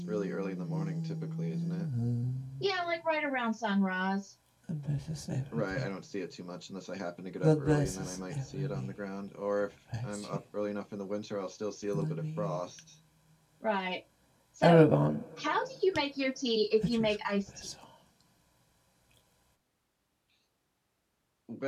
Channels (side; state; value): both; identical; correlation 1.00